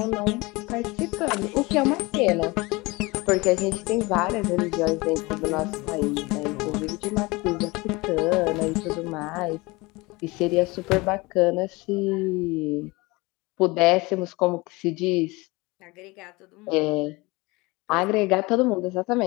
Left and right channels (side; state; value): right; quieter; 23.6 dB